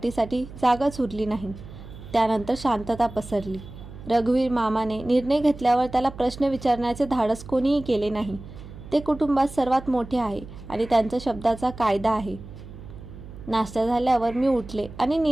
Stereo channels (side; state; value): right; noise; hum, 15 dB below the sound